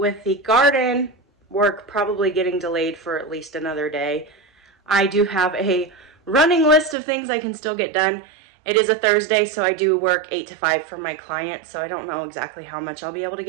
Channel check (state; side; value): drops out; left; at 7.0 s